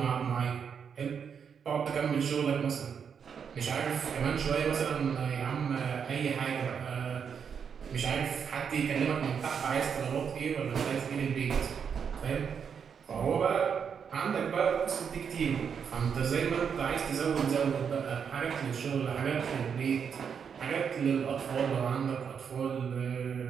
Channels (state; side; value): quieter; left; 7.0 dB